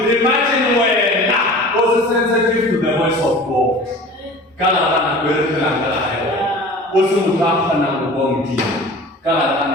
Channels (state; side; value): normal; both; correlation 0.40